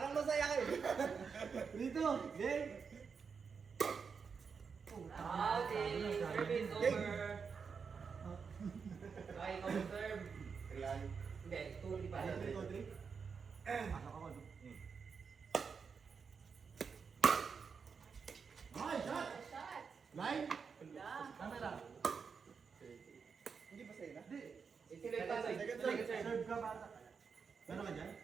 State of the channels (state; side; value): quieter; left; 5.8 dB